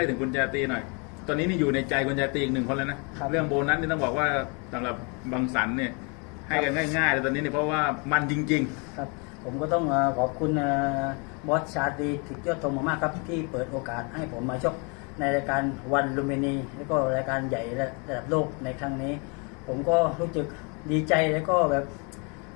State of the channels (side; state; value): right; quieter; 33.7 dB